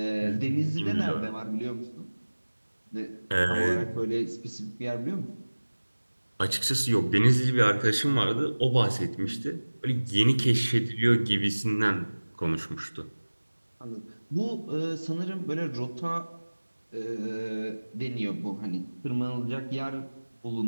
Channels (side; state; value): both; inverted; correlation -1.00